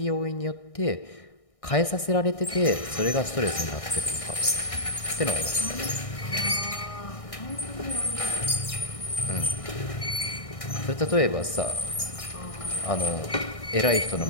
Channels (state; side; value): late; right; 1.6 ms